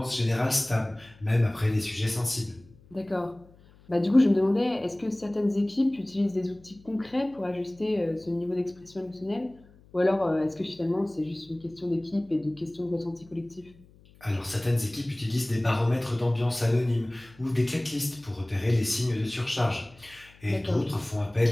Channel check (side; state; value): left; noise; hum, 26 dB below the sound